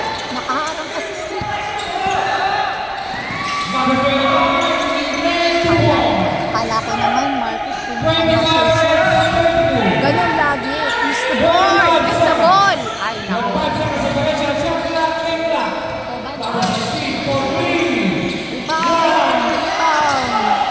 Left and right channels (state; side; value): identical; both; correlation 1.00